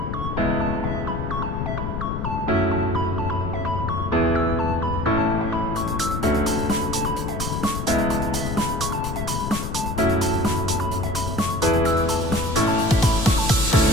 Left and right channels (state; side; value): noise; left; rumble, 3 dB below the sound